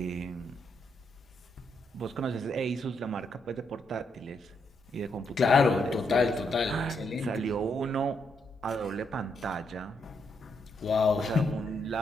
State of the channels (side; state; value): both; normal; correlation 0.78